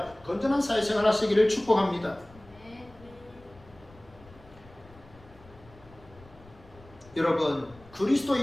건전한 사회생활 하시기를 축복합니다. 여러분,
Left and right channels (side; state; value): left; noise; rumble, 23 dB below the sound